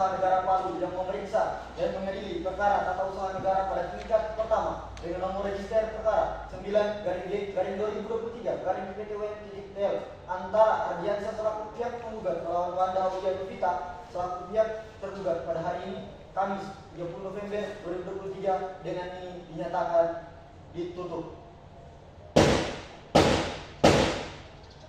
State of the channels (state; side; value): identical; both; correlation 1.00